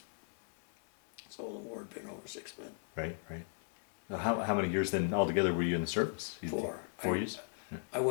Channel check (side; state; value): right; silent; 53 dB below the other